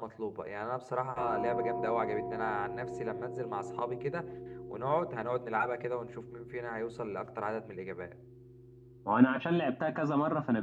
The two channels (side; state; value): both; identical; correlation 1.00